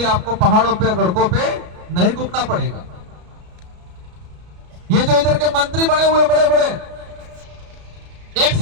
आपको पहाड़ों पे गड़कों पे नहीं घूमना पड़ेगा। ये जो इधर के मंत्री बने हुए बड़े बड़े, एक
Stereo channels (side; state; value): left; late; 33 ms